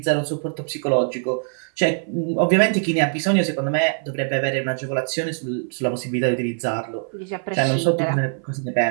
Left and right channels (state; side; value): silent; left; 59 dB below the other